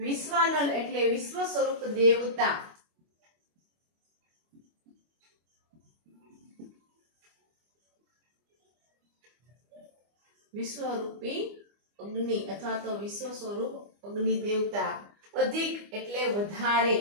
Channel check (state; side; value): late; left; 25 ms